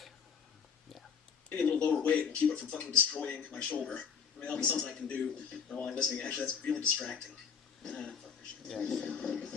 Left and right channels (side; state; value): right; quieter; 6.7 dB